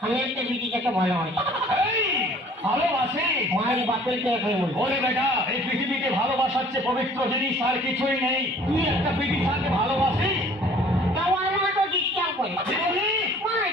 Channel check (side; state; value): both; normal; correlation 0.53